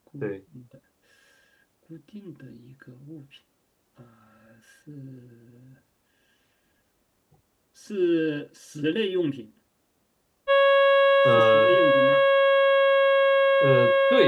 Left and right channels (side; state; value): both; identical; correlation 1.00